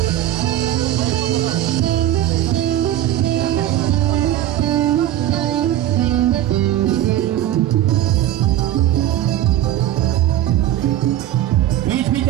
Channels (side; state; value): left; quieter; 12.8 dB